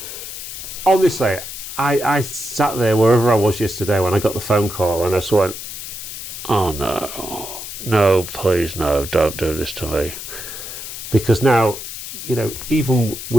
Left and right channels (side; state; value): left; noise; hiss, 9 dB below the sound